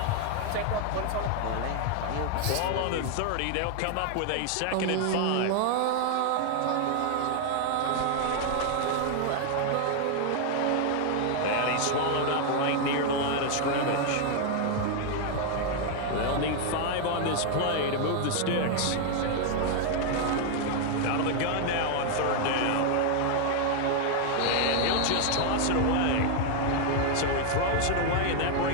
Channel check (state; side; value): different; both; correlation 0.00